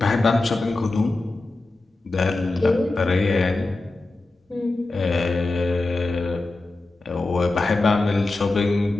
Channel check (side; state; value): right; quieter; 3.1 dB